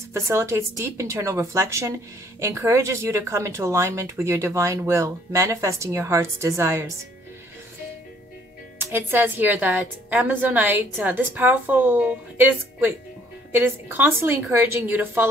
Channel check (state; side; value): normal; both; correlation 0.62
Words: facilitates deep internal reflection, encourages you to come into alignment with your divine will, manifesting your heart's desires. It says here that Amazonite, it is constantly encouraging you to